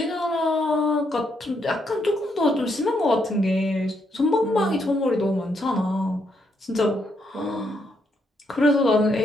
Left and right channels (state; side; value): normal; both; correlation 0.76